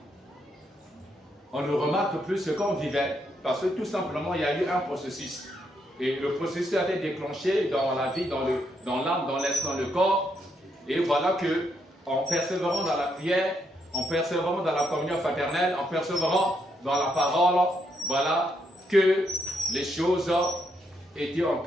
on ne remarque plus ce qu'on vivait parce que tout simplement il y a eu un processus. Et le processus a été déclenché dans la vie, dans l'âme, dans l'esprit, dans le corps. Et voilà que en persévérant dans la prière, en persévérant dans la communion fraternelle, en persévérant dans la parole, voilà que les choses étaient en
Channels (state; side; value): normal; both; correlation 0.77